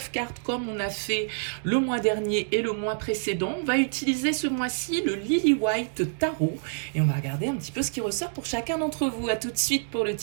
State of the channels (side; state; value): left; silent; digital silence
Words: cartes comme on a fait le mois dernier et le mois précédent. On va utiliser ce mois-ci le Lily White Tarot et on va regarder un petit peu ce qui ressort pour chacun d'entre vous. À tout de suite pour le